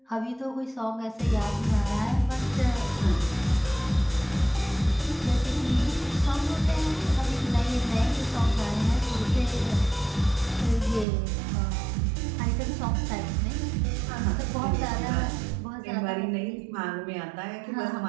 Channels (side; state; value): left; drops out; at 11.1 s